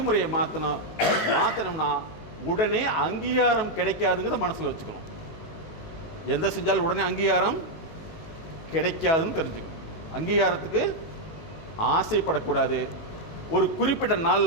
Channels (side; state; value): right; late; 18 ms